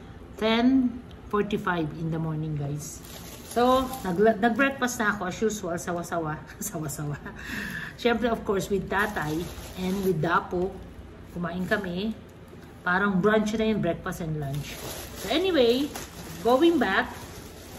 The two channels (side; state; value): both; identical; correlation 1.00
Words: 10:45 in the morning, guys. So, nag-breakfast na ako as usual, sawa-sawa. Sawa-sawa. Siyempre, of course, with tatay and with Dapo, kumain kami. Parang brunch na yun, breakfast and lunch. So anyway, going back,